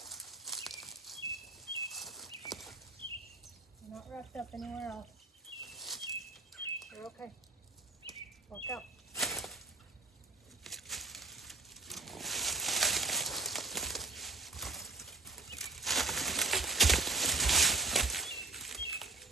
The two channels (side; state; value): left; quieter; 3.5 dB